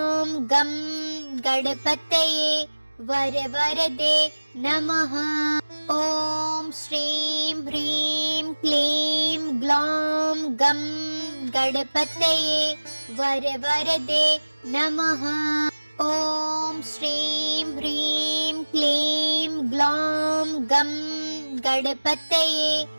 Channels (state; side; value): inverted; both; correlation -1.00